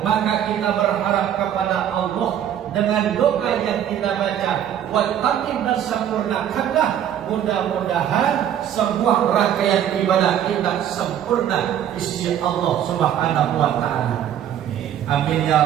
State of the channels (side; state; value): left; quieter; 10.1 dB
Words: Maka kita berharap kepada Allah dengan doa yang kita baca, wal tatim, dan sempurnakanlah. Mudah-mudahan sebuah rangkaian ibadah kita sempurna di sisi Allah Subhanahu wa taala. Amin ya